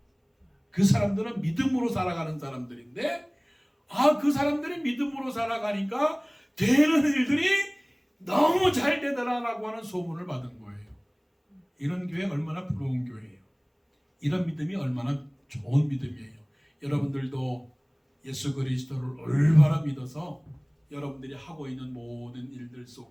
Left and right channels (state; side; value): identical; both; correlation 1.00